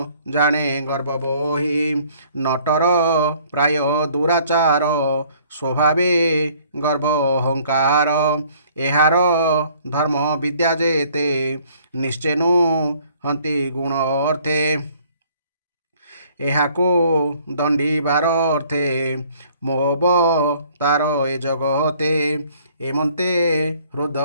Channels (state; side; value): inverted; both; correlation -0.59